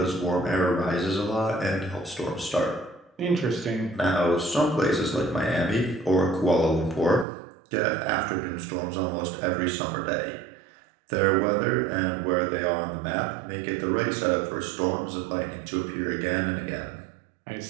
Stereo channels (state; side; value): drops out; left; at 7.2 s